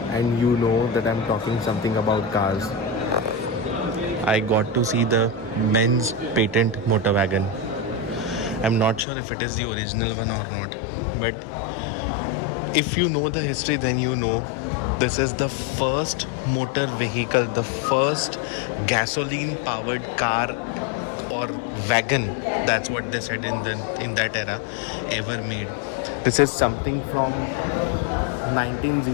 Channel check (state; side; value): drops out; right; at 9.1 s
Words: and you know that I'm talking something about cars. I got to see the Benz patent motor wagon. I'm not sure if it is the original one or not, but if you know the history, then you know this is the first motor vehicle, the first gasoline powered car or wagon, that's what they said in that era, ever made. This is something from